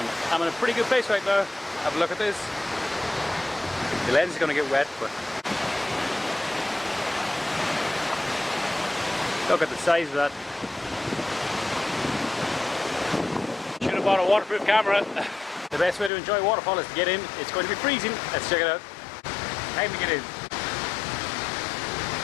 I'm in a pretty good place right now. Have a look at this. The lens is going to get wet, but look at the size of that. Should have bought a waterproof camera. The best way to enjoy a waterfall is to get in. It's going to be freezing. Let's check it out. Time to get in.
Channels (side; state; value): right; drops out; at 16.1 s